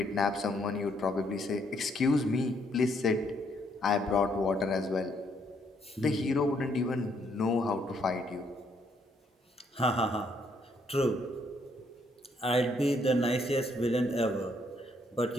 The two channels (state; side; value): normal; both; correlation 0.71